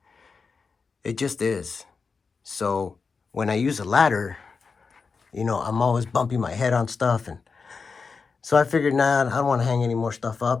It just is. So when I use a ladder, you know, I'm always bumping my head on stuff, and so I figured, nah, I don't want to hang any more stuff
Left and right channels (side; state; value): right; quieter; 5.0 dB